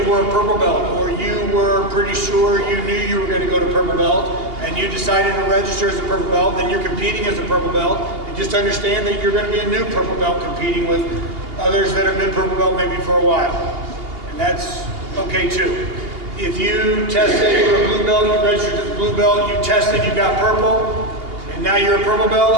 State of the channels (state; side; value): late; left; 2.8 ms